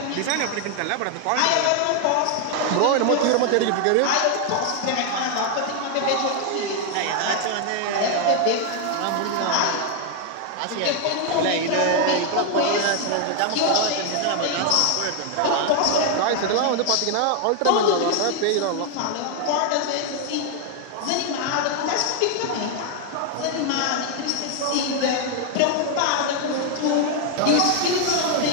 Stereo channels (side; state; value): both; different; correlation 0.01